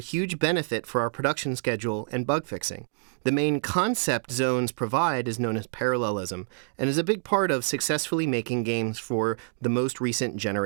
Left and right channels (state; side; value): silent; left; digital silence